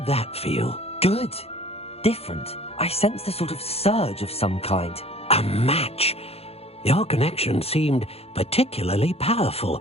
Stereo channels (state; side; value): late; right; 0.29 ms